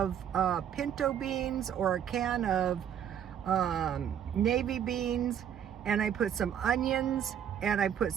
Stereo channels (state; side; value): quieter; left; 9.2 dB